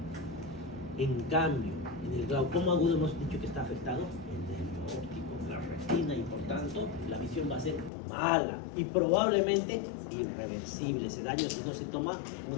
En cambio, en el glaucoma agudo hemos dicho que está afectado el nervio óptico, la retina, y por tanto la visión va a ser mala y probablemente irreversible ese daño si no se toma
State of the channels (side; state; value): right; drops out; at 7.9 s